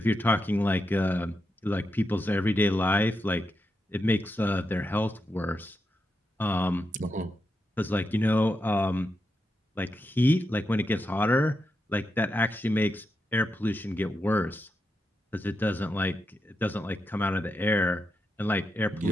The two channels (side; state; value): both; normal; correlation 0.85